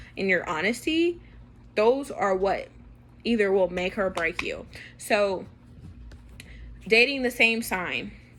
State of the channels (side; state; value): both; identical; correlation 1.00